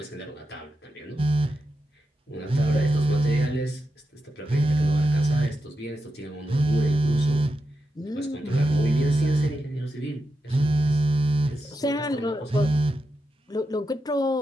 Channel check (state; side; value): normal; both; correlation 0.88